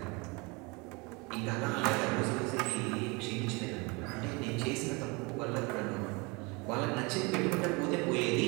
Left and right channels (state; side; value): quieter; left; 27.7 dB